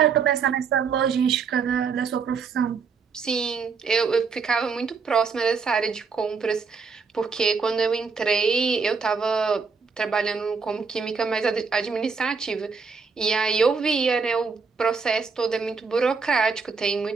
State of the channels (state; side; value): quieter; left; 5.3 dB